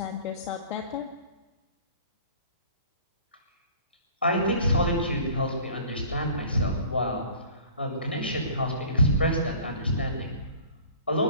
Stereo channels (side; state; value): both; inverted; correlation -0.46